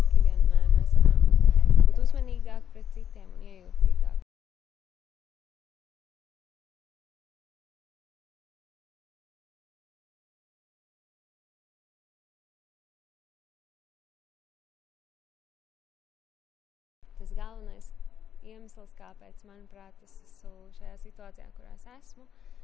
vienmēr mēs varam būt uzmanīgāki pret citiem un iejūtīgāk. Tas galvenais iemesls, kāpēc, manuprāt, es esmu šajā situācijā, kurā es esmu,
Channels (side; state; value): right; quieter; 9.1 dB